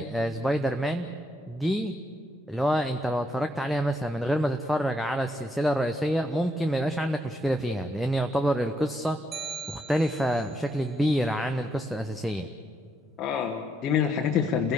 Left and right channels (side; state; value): both; normal; correlation 0.76